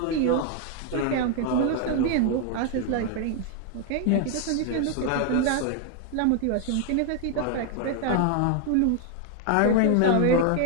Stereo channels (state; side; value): different; both; correlation 0.00